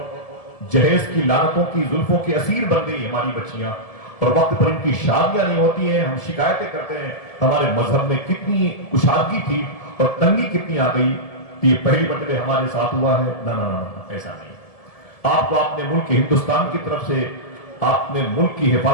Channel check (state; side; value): late; right; 1.7 ms